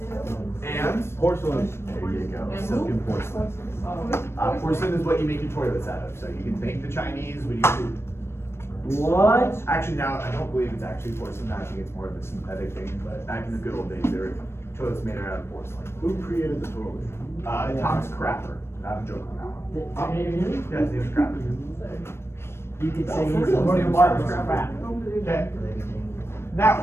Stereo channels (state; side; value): late; right; 0.12 ms